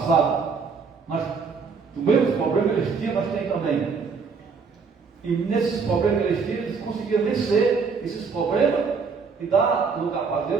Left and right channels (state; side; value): quieter; left; 5.2 dB